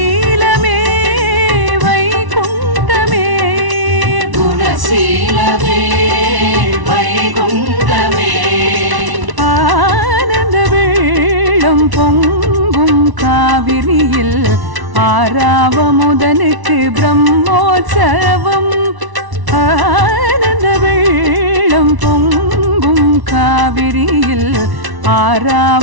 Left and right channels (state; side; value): late; left; 1.1 ms